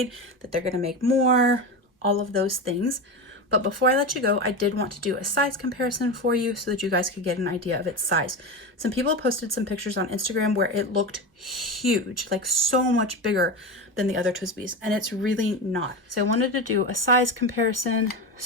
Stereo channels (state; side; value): normal; both; correlation 0.21